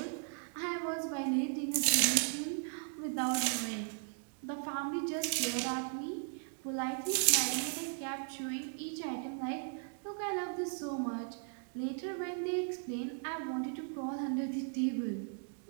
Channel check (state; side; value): silent; left; 53 dB below the other